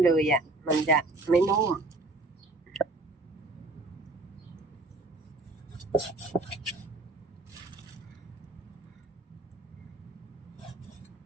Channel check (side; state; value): left; quieter; 3.0 dB